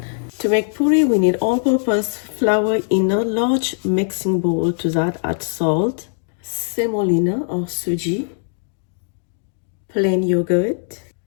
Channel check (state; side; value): silent; right; digital silence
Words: To make puri we need all-purpose flour in a large mixing bowl. To that add salt, semolina or suji, plain yogurt,